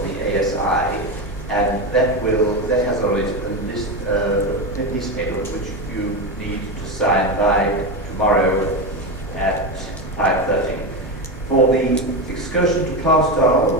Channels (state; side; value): normal; both; correlation 0.16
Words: the ASI, and that has a list, a piece of paper which you need to sign by tomorrow at 5:30. For the excursion to